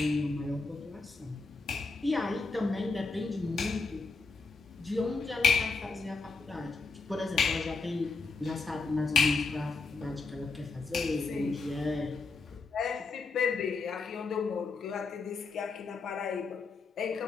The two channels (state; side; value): quieter; right; 4.0 dB